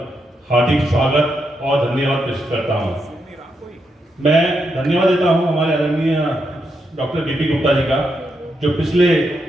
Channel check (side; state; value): both; normal; correlation 0.82